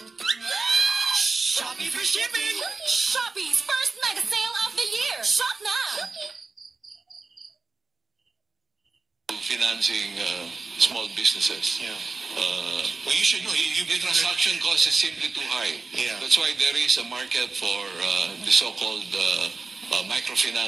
Shopping free shipping! Shopee's first mega sale of the year! Shop now! financing small businesses. Yeah. Well, you should know. The transaction cost is simply too high. Yeah. That's why there is a market for the so-called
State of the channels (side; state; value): left; quieter; 4.0 dB